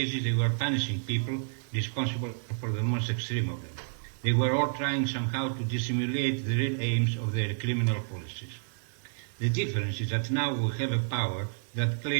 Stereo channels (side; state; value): left; silent; digital silence